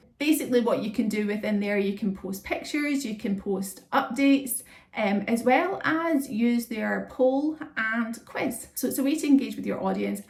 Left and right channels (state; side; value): identical; both; correlation 1.00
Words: Basically what you can do within there, you can post pictures, you can post updates, as well as use their poll and quiz. So it's a way to engage with your audience,